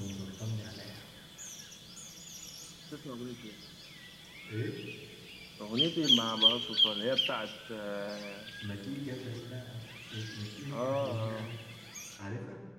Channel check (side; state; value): right; noise; rumble, 29 dB below the sound